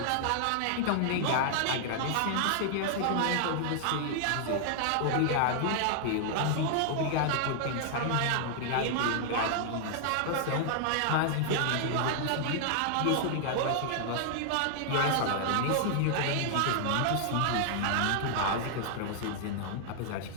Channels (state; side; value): different; both; correlation 0.00